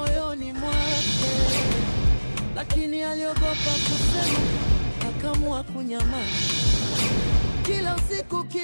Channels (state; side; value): inverted; both; correlation -1.00